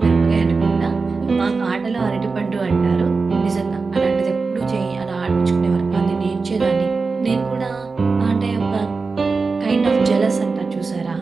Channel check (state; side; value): quieter; left; 4.3 dB